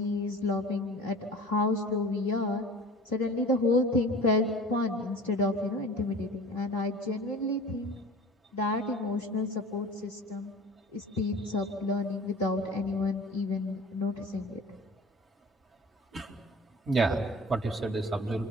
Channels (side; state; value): both; normal; correlation 0.41